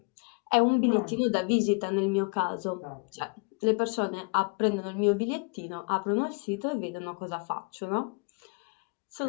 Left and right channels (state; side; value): quieter; right; 33.9 dB